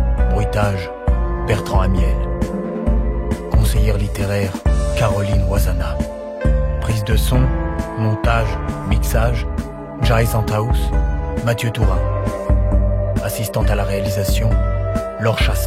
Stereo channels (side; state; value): both; identical; correlation 1.00